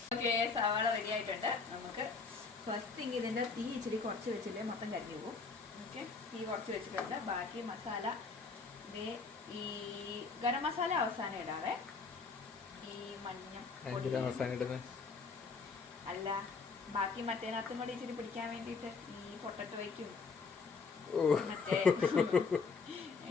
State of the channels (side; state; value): right; quieter; 4.7 dB